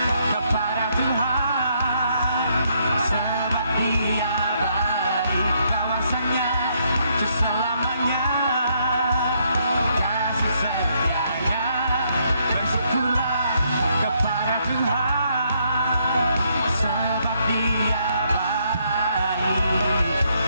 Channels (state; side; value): inverted; both; correlation -0.73